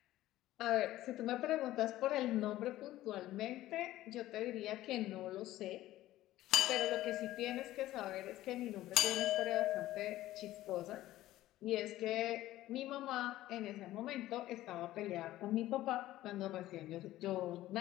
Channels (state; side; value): quieter; right; 15.2 dB